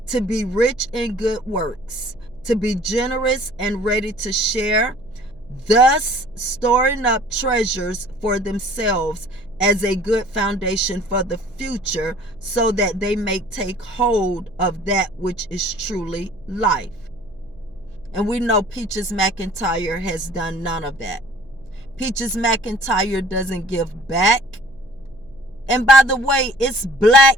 to be rich in good works, to be generous and ready to share, thus storing up treasures for themselves as a good foundation for the future, so that they may take hold of that which is truly life." And we know Peaches McIntyre has done none of that. Peaches McIntyre doesn't give back. And by the way, it's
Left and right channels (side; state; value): right; noise; hum, 26 dB below the sound